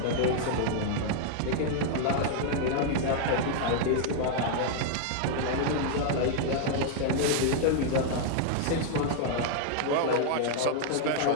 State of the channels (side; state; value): both; different; correlation -0.01